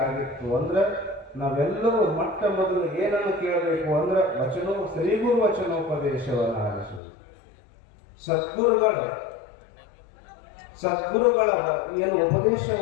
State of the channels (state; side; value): drops out; right; at 7.0 s